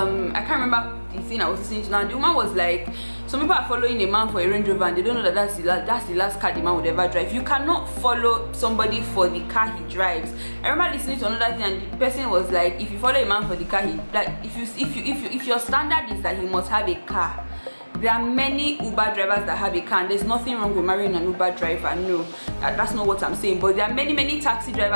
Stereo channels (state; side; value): inverted; both; correlation -1.00